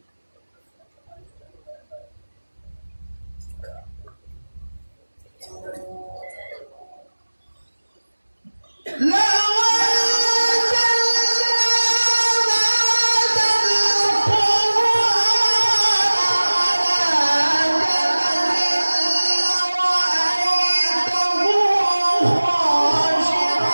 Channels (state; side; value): inverted; both; correlation -1.00